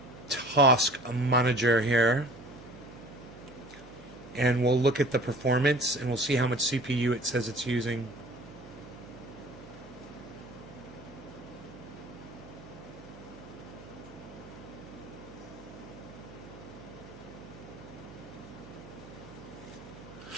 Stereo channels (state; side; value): noise; right; hum, 17 dB below the sound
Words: task manager here, and we'll look at the performance, and we'll see how much CPU it says it's using.